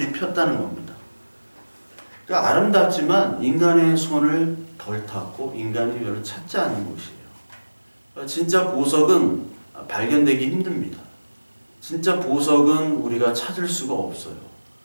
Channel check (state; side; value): inverted; both; correlation -1.00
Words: 폈다는 겁니다. 그러니까 아름답지만 인간의 손을 덜 탔고 인간이 별로 찾지 않는 곳이에요. 그러니까 진짜 보석은 발견되기 힘듭니다. 진짜 보석은 우리가 찾을 수가 없어요.